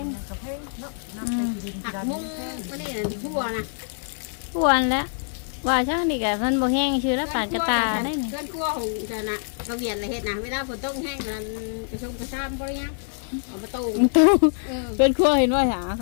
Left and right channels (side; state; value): right; silent; digital silence